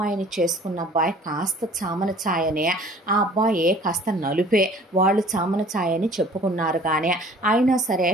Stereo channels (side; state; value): both; normal; correlation 0.50